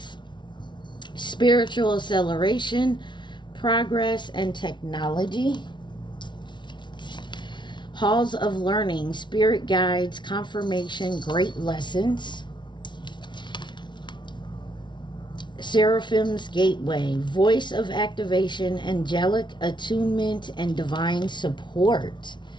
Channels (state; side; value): late; right; 0.23 ms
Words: spiritual acceleration, progress, and technology. Halls of learning, spirit guides, confirmation, great lessons. Seraphim's Gateway, voice of activation, angelic attunement, and divine support.